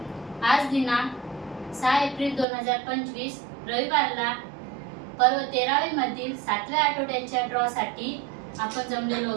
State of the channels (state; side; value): drops out; left; at 2.5 s